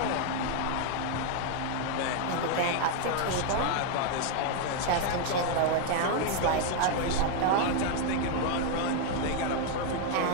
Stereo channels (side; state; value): both; different; correlation 0.01